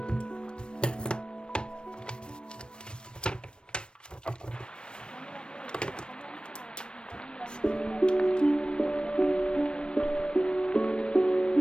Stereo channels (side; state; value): right; late; 0.053 ms